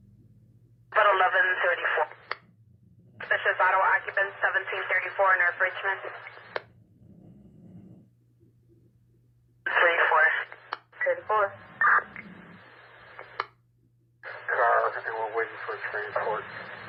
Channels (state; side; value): identical; both; correlation 1.00